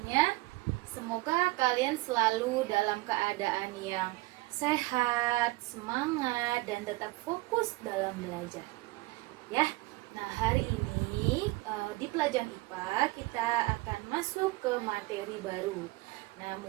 Semoga kalian selalu dalam keadaan yang sehat, semangat, dan tetap fokus dalam belajar. Ya. Nah, hari ini di pelajaran IPA kita akan masuk ke materi baru. Nah,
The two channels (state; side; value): quieter; left; 21.2 dB